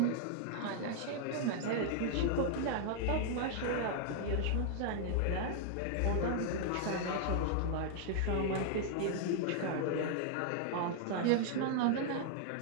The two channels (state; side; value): different; both; correlation 0.00